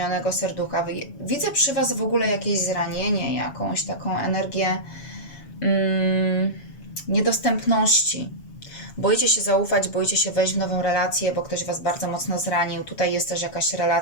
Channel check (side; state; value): right; late; 7.3 ms